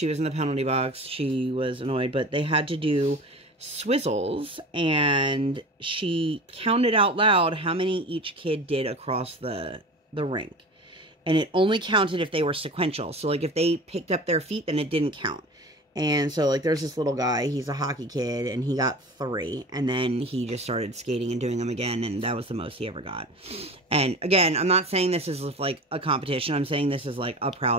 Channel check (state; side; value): normal; both; correlation 0.35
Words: was in the penalty box. She was annoyed. But they had to do swizzles. And she counted out loud how many each kid did across the rink. And it only counted if they were sequential. So, like, if they picked up their feet, then it didn't count. And so, like, there's this little guy, he's a hockey kid, and he got 3, and then he just started skating and doing them again, and that was the most he ever got. And, again, I'm not saying this is, like, a competition, I'm saying this is, like, a